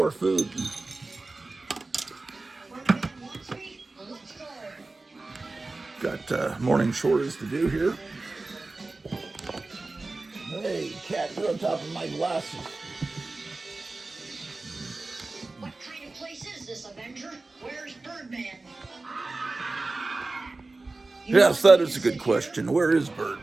food. Got morning chores to do here. Hey, cat, you're on top of my glasses. What kind of place is this, Avenger? Where's Birdman? Yes, that is a good question. Where is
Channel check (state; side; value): quieter; left; 3.4 dB